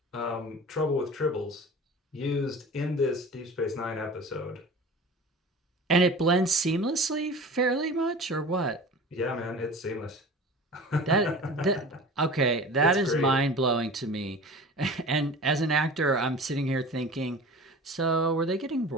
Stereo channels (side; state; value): both; normal; correlation 0.38